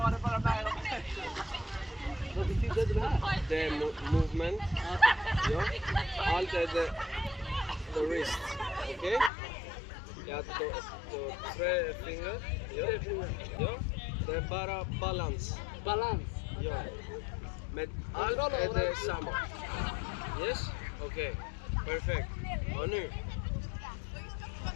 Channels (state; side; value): drops out; right; at 9.3 s